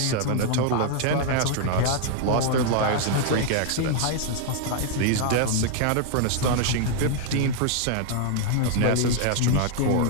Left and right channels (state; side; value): different; both; correlation 0.00